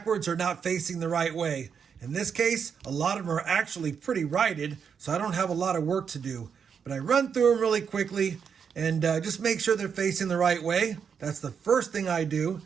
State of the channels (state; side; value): quieter; left; 6.9 dB